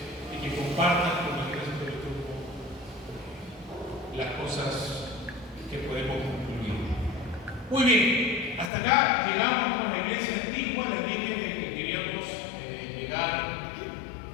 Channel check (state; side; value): drops out; right; at 8.7 s